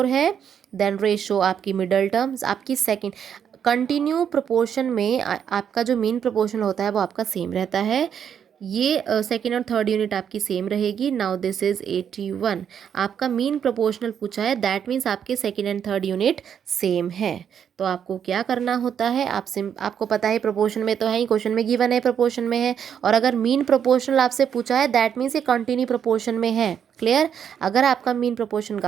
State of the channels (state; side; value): quieter; left; 8.3 dB